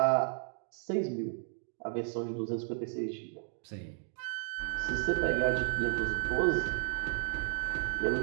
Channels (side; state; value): left; silent; 55 dB below the other